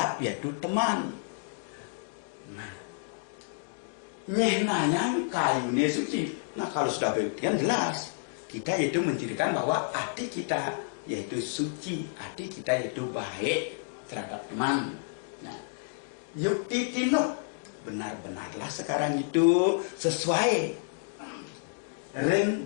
yaitu teman. Nah, nyehnanya kayune suci. Nah kalau sudah begitu jelas. Kita yaitu mencirikan bahwa hati kita yaitu suci, hati kita yaitu baik terhadap teman. Nah, yukti tinuk, benar-benarlah sekarang itu sesuai ring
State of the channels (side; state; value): right; silent; digital silence